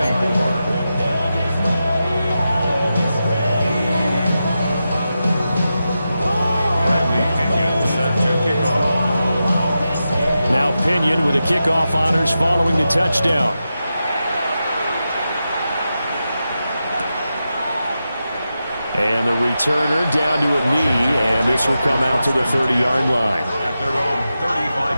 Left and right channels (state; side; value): inverted; both; correlation -0.90